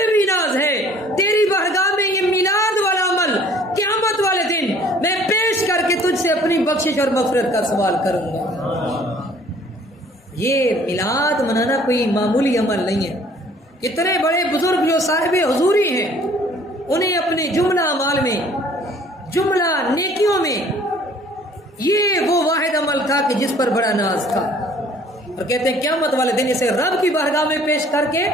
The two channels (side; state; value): both; normal; correlation 0.55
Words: بھی ناز ہے، تیری بارگاہ میں یہ میلاد والا عمل قیامت والے دن میں پیش کر کے تجھ سے اپنی بخشش اور مغفرت کا سوال کروں گا. یہ میلاد منانا کوئی معمولی عمل نہیں ہے. کتنے بڑے بزرگ جو صاحب حضوری ہیں انہیں اپنے جملہ اعمال میں، جملہ نیکیوں میں یہ وہ واحد عمل تھا کہ جس پر بڑا ناز تھا، اور کہتے ہیں قیامت والے دن اسے رب کی بارگاہ میں پیش کر کے